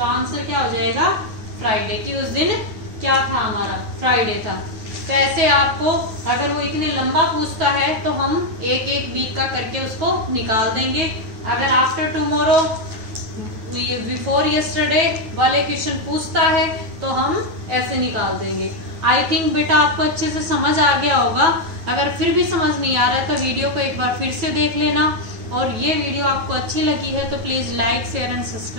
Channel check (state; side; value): late; left; 9.4 ms